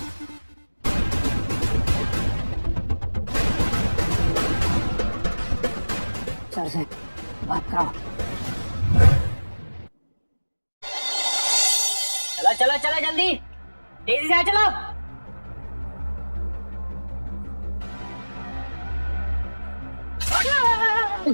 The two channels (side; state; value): both; inverted; correlation -1.00